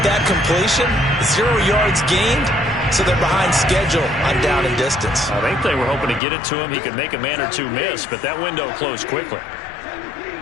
that completion, 0 yards gained, so they're behind schedule on down and distance. I think they were hoping to get it to him. He could make a man or two miss, but that window closed quickly.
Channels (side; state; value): right; drops out; at 6.2 s